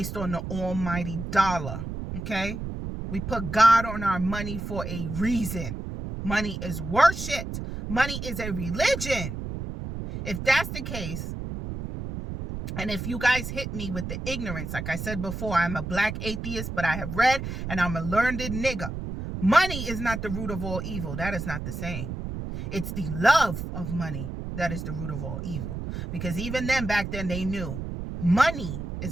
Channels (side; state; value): right; noise; rumble, 6 dB below the sound